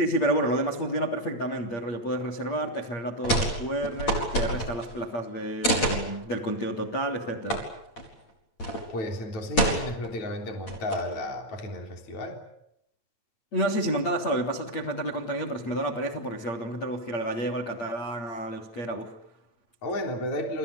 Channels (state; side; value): late; right; 8.7 ms